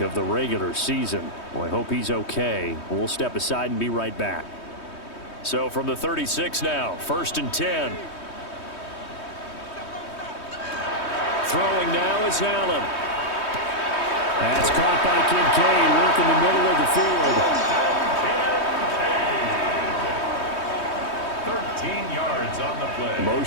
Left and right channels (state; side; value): late; right; 3.2 ms